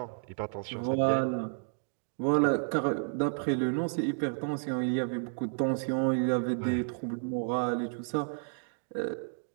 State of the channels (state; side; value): silent; left; digital silence